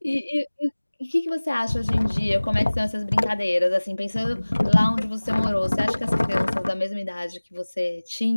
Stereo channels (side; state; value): both; inverted; correlation -1.00